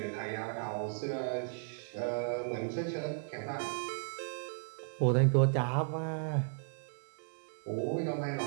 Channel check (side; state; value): left; silent; digital silence